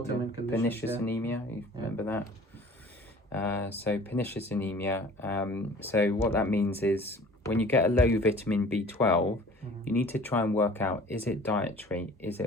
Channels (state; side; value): normal; both; correlation 0.48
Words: Pernicious anemia. You remember that? So pernicious anemia. So what that means is when you get a low vitamin B12, you need to try and work out, is it dietary? Is